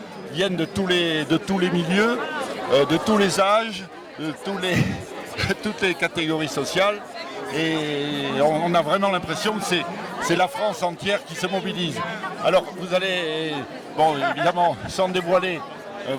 viennent de tous les milieux, de tous les âges, de toutes les catégories sociales, et on a vraiment l'impression que c'est la France entière qui se mobilise. Alors vous allez, bon évidemment, sans dévoiler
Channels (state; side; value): identical; both; correlation 1.00